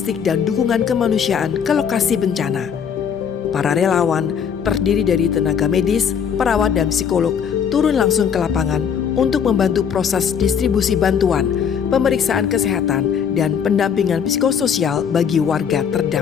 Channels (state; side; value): quieter; right; 7.4 dB